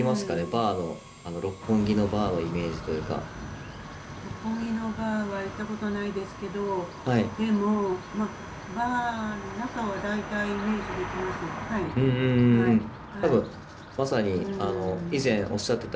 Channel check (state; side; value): identical; both; correlation 1.00